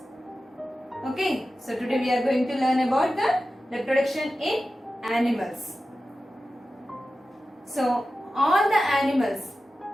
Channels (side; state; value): both; normal; correlation 0.94